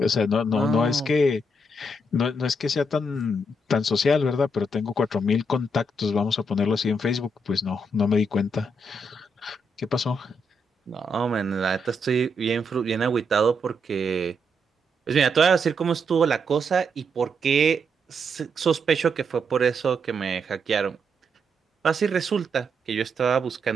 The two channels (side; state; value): both; normal; correlation 0.78